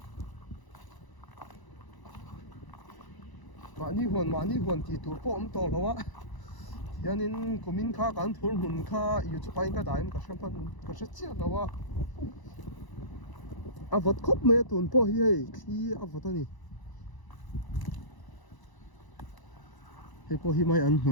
mani huan ti tur po om to lawa hianin kumin kha kan thul mun kha YouTube pa in ka daim ka hram pan ka hre chia lawa avot khop me tun po hi hei khi avot ani hei po hi mai an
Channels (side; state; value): right; late; 1.0 ms